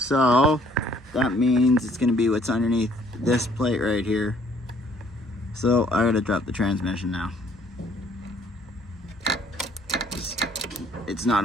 that means it's gonna be what's underneath this plate right here. So, I gotta drop the transmission now. It's not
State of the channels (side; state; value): both; normal; correlation 0.61